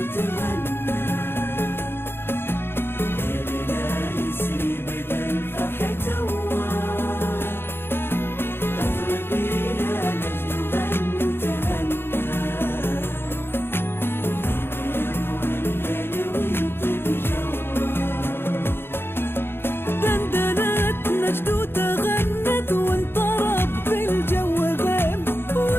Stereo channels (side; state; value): right; late; 0.11 ms